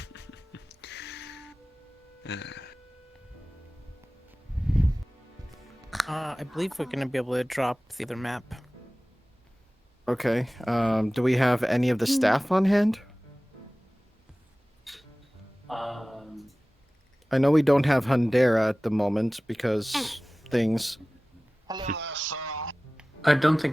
I believe we're gonna be able to drop the other map. Okay. Do we have any of the staff on hand? I know we don't have Hundera at the moment because things. Hello there, sir. I don't think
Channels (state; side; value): normal; both; correlation 0.98